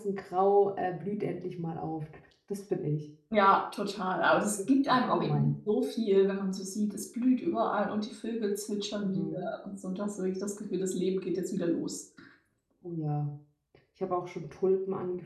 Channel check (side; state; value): both; identical; correlation 1.00